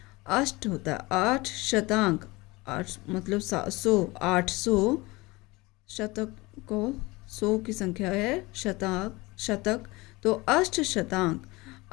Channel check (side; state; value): right; quieter; 22.7 dB